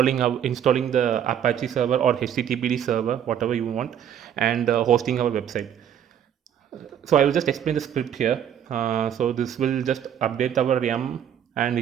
the Apache server or HTTPD server, whatever you want, and hosting our website. So I will just explain the script here. So this will just update our YAM and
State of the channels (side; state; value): left; quieter; 9.4 dB